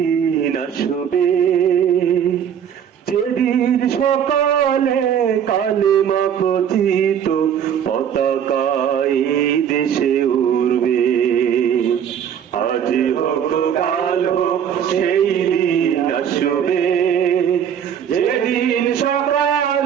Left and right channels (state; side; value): quieter; left; 8.6 dB